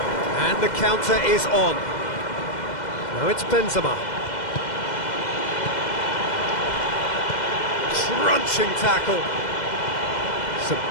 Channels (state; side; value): late; right; 2.1 ms